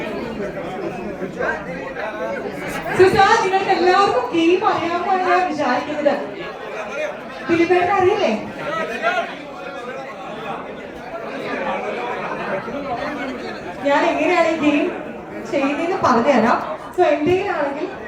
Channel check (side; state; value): both; identical; correlation 1.00